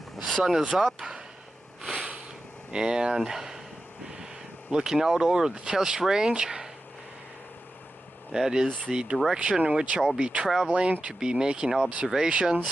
The sun is up and looking out over the test range. That is the direction in which I'll be traveling to be making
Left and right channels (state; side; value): normal; both; correlation 0.92